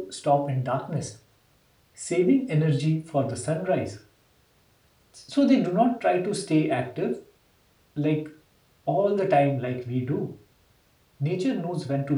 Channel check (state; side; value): identical; both; correlation 1.00